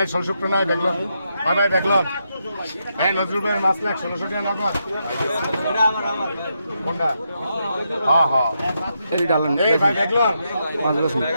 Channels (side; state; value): both; inverted; correlation -0.82